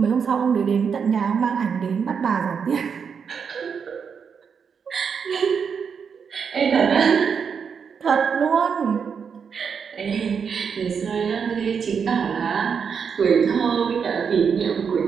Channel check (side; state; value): left; quieter; 6.5 dB